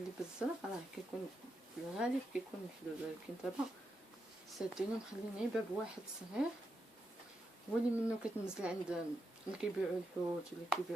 بالزرق راه كيكون في الغالب كيكون محدود، ولكن دابا سادينو مخلين غير باب واحد صغير هو اللي منه كتنزل عند اللي كيبيعوا الحوت واللي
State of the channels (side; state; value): both; normal; correlation 0.84